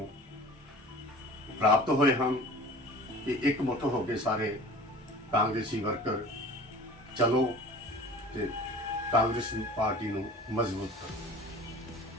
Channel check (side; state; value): both; normal; correlation 0.42